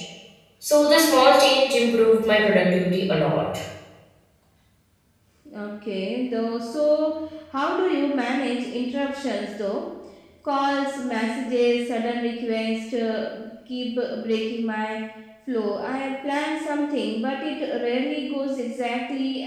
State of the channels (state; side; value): identical; both; correlation 1.00